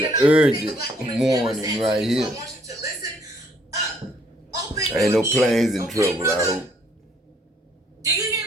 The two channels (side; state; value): both; normal; correlation 0.65